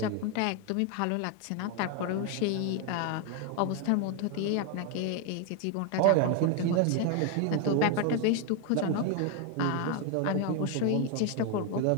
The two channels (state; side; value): different; both; correlation 0.01